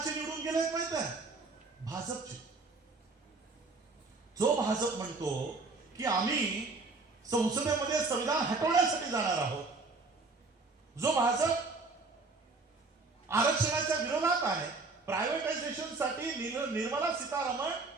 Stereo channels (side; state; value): left; quieter; 3.8 dB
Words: निवडून गेले माहित आहे? भाजपचे. जो भाजप म्हणतो की आम्ही संसदेमध्ये संविधान हटवण्यासाठी जाणार आहोत, जो भाजप आरक्षणाच्या विरोधात आहे, प्रायव्हेटायझेशन साठी निर्मला सीतारामन